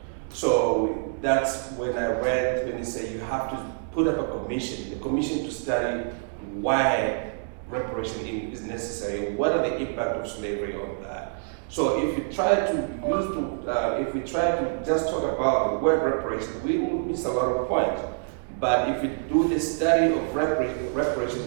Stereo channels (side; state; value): left; silent; digital silence